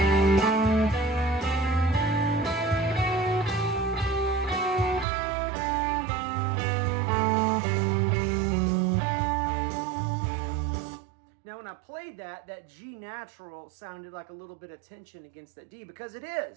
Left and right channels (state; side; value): drops out; left; at 5.1 s